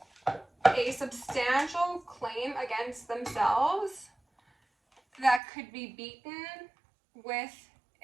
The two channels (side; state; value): left; drops out; at 5.4 s